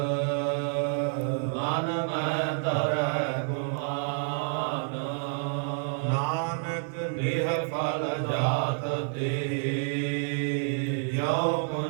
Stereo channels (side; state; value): left; silent; 59 dB below the other